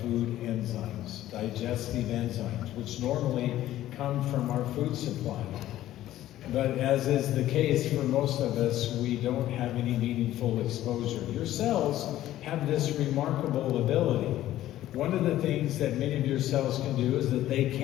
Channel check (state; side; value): quieter; right; 13.8 dB